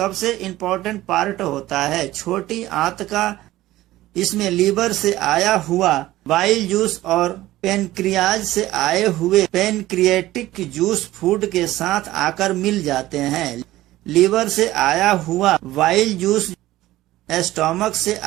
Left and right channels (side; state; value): left; quieter; 16.1 dB